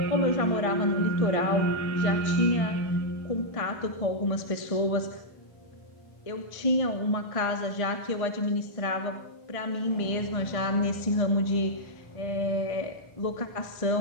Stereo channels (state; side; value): late; right; 1.5 ms